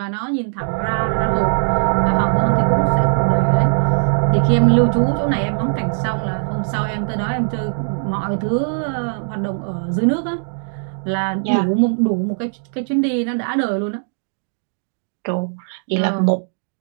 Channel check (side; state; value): left; silent; digital silence